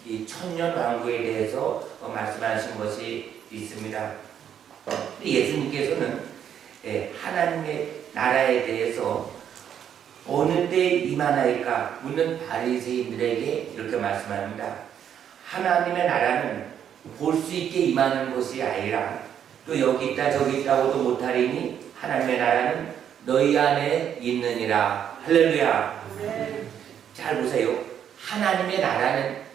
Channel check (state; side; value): quieter; left; 9.1 dB